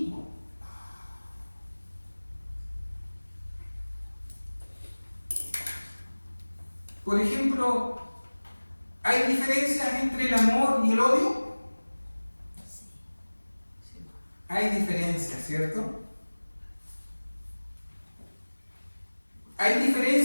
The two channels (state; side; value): inverted; both; correlation -1.00